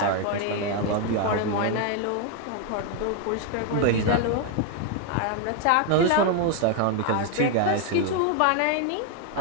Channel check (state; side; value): different; both; correlation 0.01